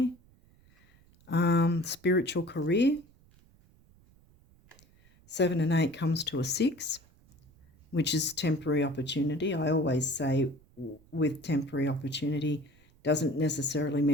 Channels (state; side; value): noise; right; rumble, 29 dB below the sound